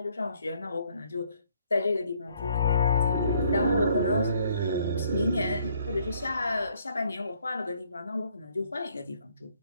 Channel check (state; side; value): inverted; both; correlation -0.66